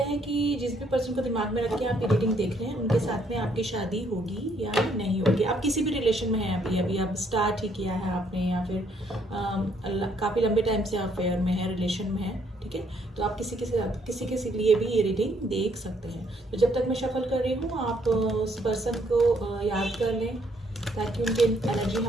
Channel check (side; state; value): both; normal; correlation 0.69